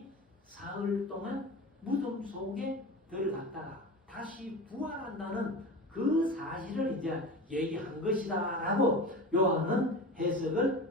사흘 동안 무덤 속에 들어갔다가 다시 부활한다는 그 사실을 이제 얘기한 것이다 라고 요한은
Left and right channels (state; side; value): normal; both; correlation 0.31